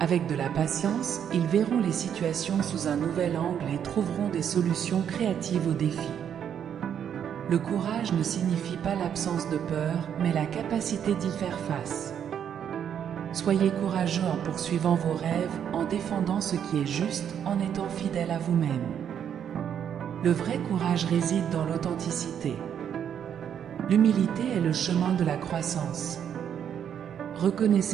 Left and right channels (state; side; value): quieter; left; 8.8 dB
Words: Avec de la patience, ils verront les situations sous un nouvel angle et trouveront des solutions créatives aux défis. Le courage ne signifie pas l'absence de peur, mais la capacité d'y faire face. Soyez courageux en poursuivant vos rêves, en défendant ce qui est juste, en étant fidèle à vous-même. Le vrai courage réside dans l'authenticité. L'humilité est le chemin de la croissance.